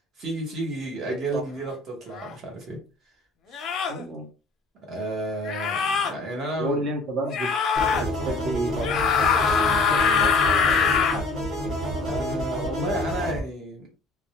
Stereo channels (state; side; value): quieter; right; 3.1 dB